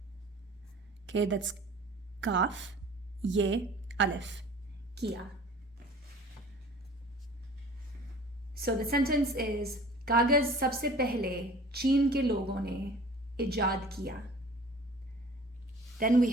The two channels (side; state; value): both; normal; correlation 0.46